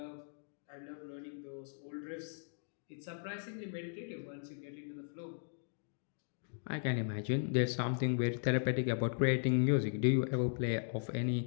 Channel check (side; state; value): right; silent; digital silence